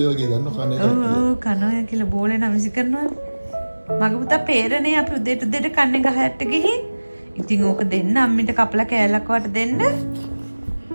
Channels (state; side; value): inverted; both; correlation -1.00